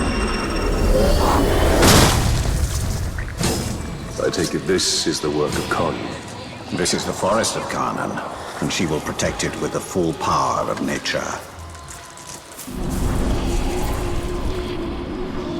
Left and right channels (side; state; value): both; identical; correlation 1.00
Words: I take it this is the work of Carnan. This is the forest of Carnan, and she will protect it with the full power of nature.